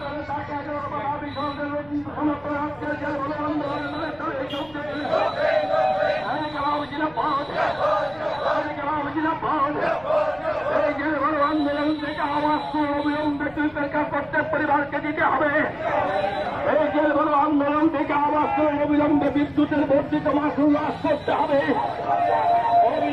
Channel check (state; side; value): noise; left; rumble, 26 dB below the sound